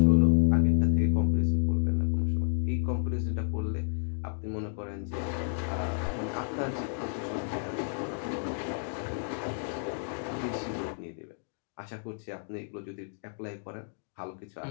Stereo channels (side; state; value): right; silent; digital silence